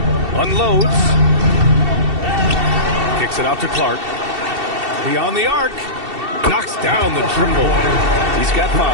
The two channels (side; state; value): left; late; 2.7 ms